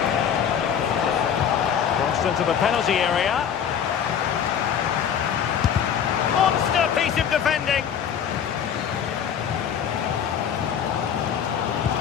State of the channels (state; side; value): quieter; right; 8.3 dB